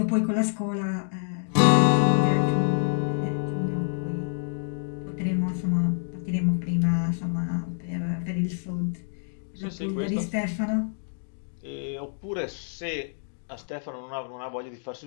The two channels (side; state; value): right; silent; digital silence